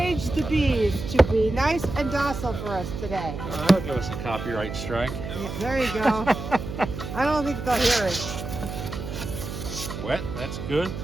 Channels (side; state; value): right; noise; hum, 7 dB below the sound